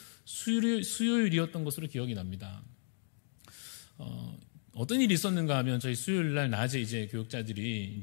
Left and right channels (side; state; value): right; silent; digital silence